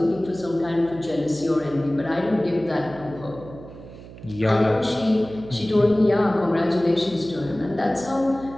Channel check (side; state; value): right; noise; hum, 17 dB below the sound